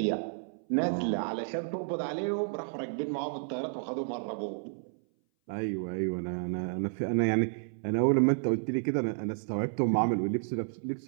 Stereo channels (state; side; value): silent; left; 57 dB below the other